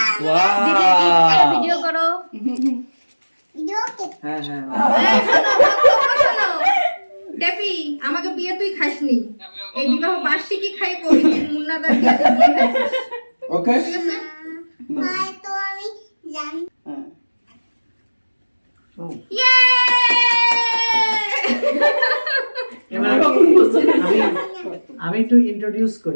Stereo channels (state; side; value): inverted; both; correlation -1.00